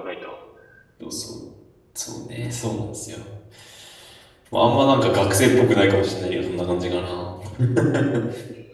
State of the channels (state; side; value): identical; both; correlation 1.00